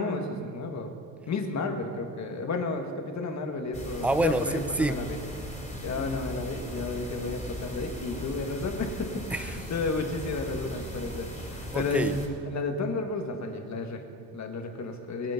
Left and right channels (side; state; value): both; normal; correlation 0.34